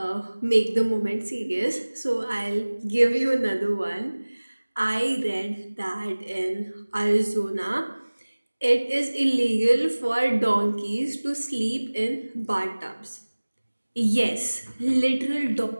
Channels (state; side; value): inverted; both; correlation -1.00